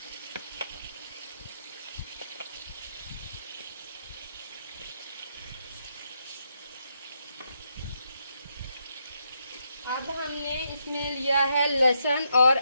अब हमने इसमें लिया है लहसुन और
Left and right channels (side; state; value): both; inverted; correlation -0.79